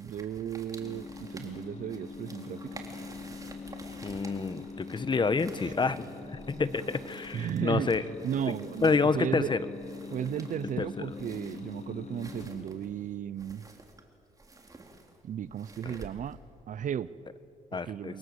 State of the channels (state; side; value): normal; both; correlation 0.56